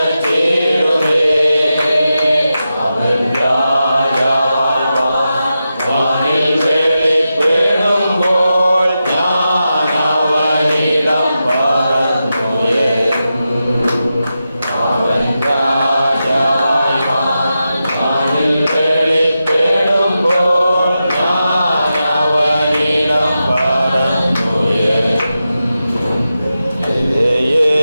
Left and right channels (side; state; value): both; inverted; correlation -0.90